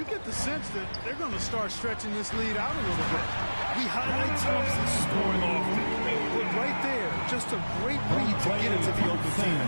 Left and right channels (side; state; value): both; inverted; correlation -1.00